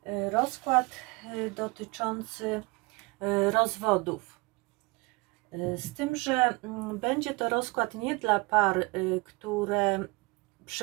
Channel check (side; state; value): left; quieter; 26.0 dB